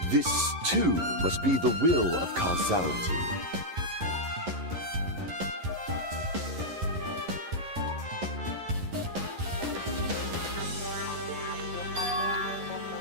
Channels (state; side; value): late; left; 11 ms